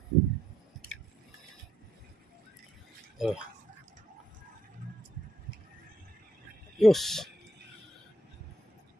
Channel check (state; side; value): normal; both; correlation 0.75